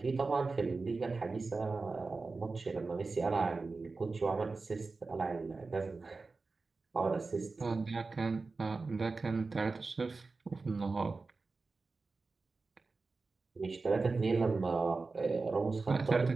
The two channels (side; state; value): left; quieter; 3.9 dB